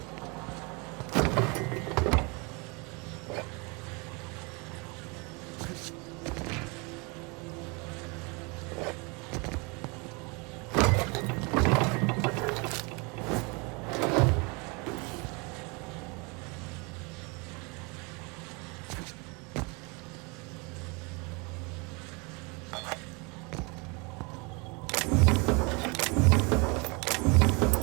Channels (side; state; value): left; quieter; 29.8 dB